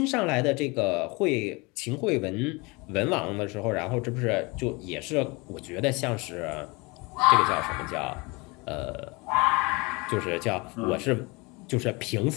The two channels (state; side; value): quieter; right; 26.7 dB